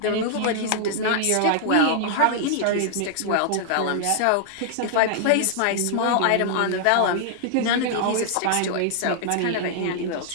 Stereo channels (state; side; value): different; both; correlation -0.01